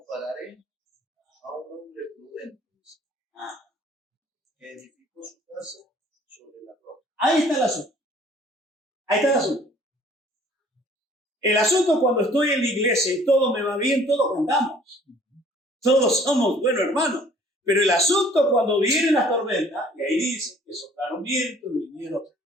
a un hombre prudente que edificó su casa sobre la roca. Ahí está el asunto. El asunto cuando estoy en la iglesia y todo me va bien, todos cantamos. Todos somos buenos hermanos. Pero el asunto cuando vienen las tormentas, y ahí dice que soplaron vientos, vinieron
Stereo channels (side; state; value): both; normal; correlation 0.55